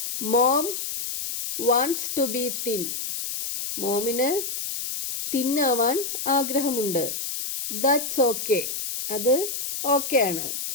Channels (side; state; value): left; noise; hiss, 4 dB below the sound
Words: Mom wants to be thin. മോമിന് തിന്നാവാൻ ആഗ്രഹമുണ്ട്. That's okay. അത് ഓക്കെ ആണ്.